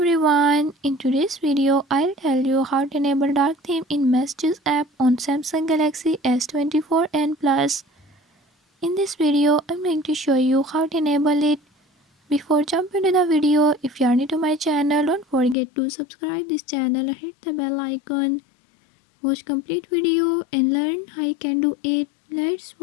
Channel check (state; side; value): drops out; right; at 15.6 s